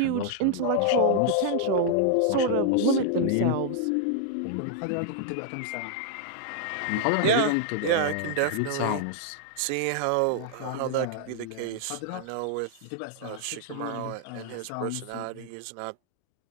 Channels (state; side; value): different; both; correlation -0.01